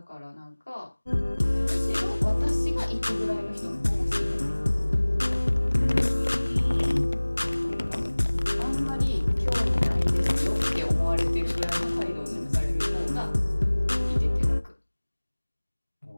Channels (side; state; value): both; inverted; correlation -1.00